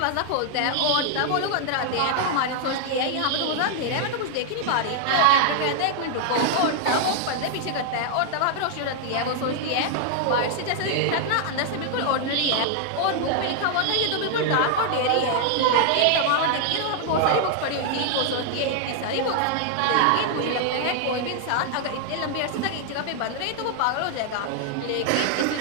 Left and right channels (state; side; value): different; both; correlation 0.00